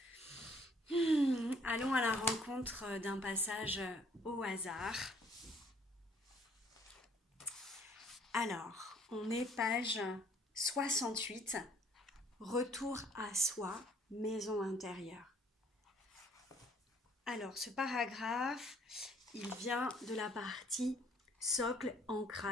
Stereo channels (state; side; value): normal; both; correlation 0.61